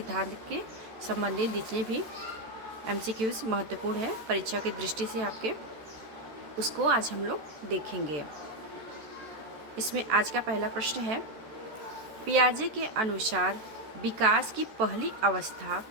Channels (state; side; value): late; left; 14 ms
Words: के संबंधित जितने भी MCQs महत्वपूर्ण है परीक्षा की दृष्टि से आपके, उसको आज हम लोग देखेंगे। इसमें आज का पहला प्रश्न है, पियाजे के अनुसार विकास की पहली अवस्था